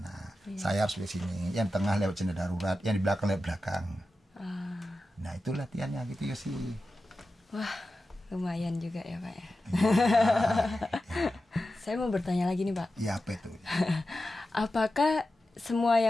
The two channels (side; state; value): both; normal; correlation 0.92